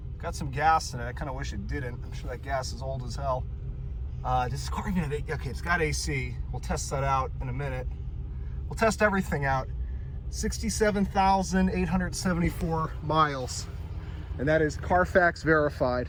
Got some gas in it. I kind of wish it didn't. I'm sure that gas is old as hell. This car even have, okay, it's got AC. We'll test that out in a minute. We'll test everything out. 67,874 miles, and that is Carfax verified.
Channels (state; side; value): identical; both; correlation 1.00